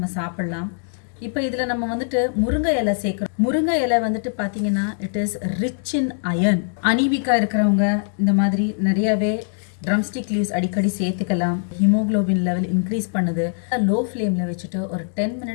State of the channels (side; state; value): right; silent; digital silence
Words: சாப்பிட்லாம். இப்போ இதில் நம்ம வந்துட்டு முருங்கை இலை சேர்க்குறோம். முருங்கை இலை வந்துட்டு பார்த்தீங்கன்னா it is rich in iron. அனீமிக்கா இருக்கிறவங்க இந்த மாதிரி நிறையாவே ட்ரம்ஸ்டிக் லீவ்ஸ் அடிக்கடி சேர்த்துக்கலாம். ஹீமோக்ளோபின் லெவல் இன்க்ரீஸ் பண்ணுது. லோ ஃப்ளேமில் வச்சுட்டு ஒரு 10